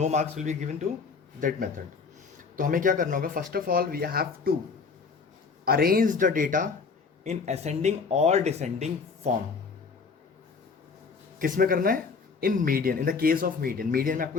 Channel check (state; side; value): quieter; right; 5.0 dB